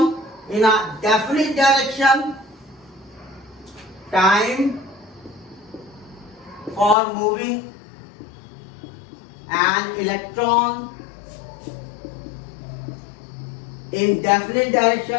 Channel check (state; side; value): drops out; right; at 7.0 s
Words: in a definite direction, time for moving an electron in definite